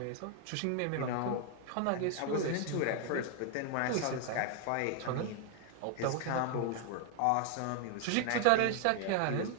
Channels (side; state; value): both; different; correlation 0.00